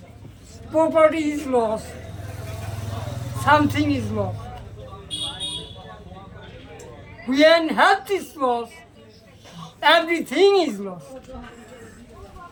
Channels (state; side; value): identical; both; correlation 1.00